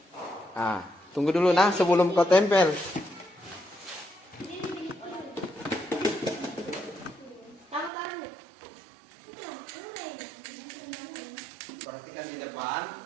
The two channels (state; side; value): drops out; left; at 7.9 s